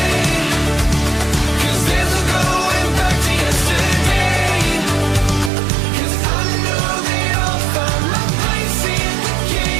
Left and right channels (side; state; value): left; drops out; at 5.5 s